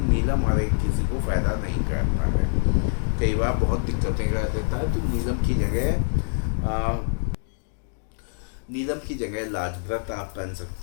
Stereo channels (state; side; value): silent; right; digital silence